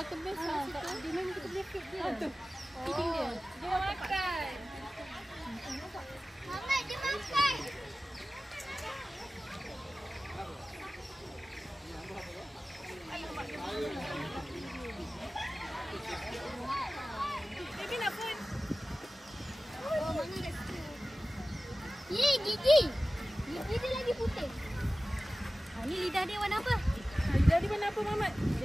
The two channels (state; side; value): normal; both; correlation 0.96